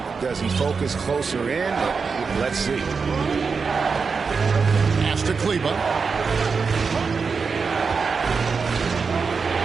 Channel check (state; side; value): quieter; left; 5.2 dB